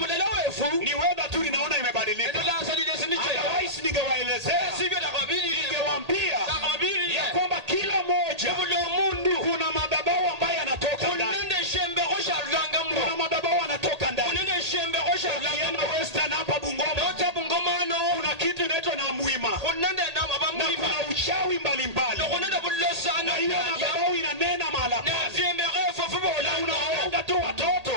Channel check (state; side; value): late; left; 1.8 ms